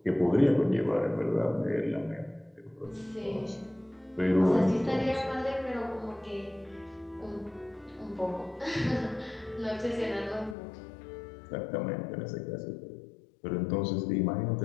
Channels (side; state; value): right; drops out; at 10.6 s